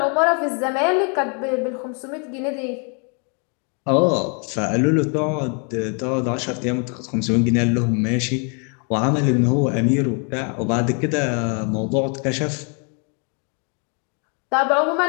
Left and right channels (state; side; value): quieter; right; 37.9 dB